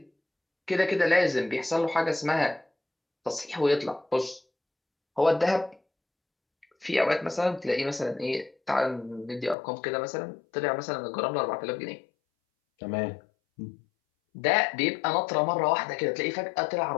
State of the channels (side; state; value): right; drops out; at 9.6 s